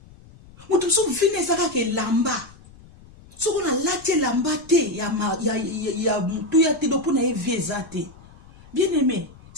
Mutu so vine saka ke lamba. So ko na lati lamba te ya mutu ya te do po na e viezate. Bien aimé,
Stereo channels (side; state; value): left; noise; rumble, 23 dB below the sound